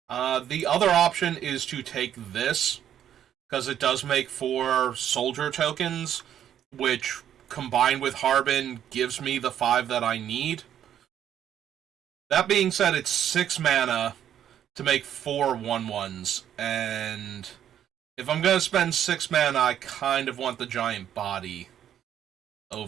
The other option is to take this, because it does make 4 soldier tokens, which, combined with Harbin, gives me the 5 that I need. That being said, it's 6 mana to make 4 1/1s, and if I'm going to spend 6 mana, I kind of want the giant body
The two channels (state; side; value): quieter; left; 10.2 dB